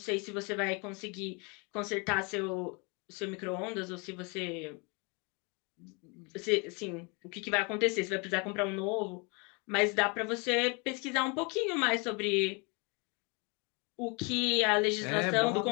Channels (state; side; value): quieter; right; 31.4 dB